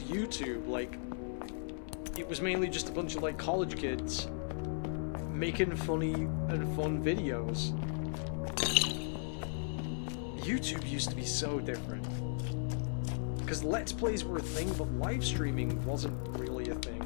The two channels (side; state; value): right; silent; 54 dB below the other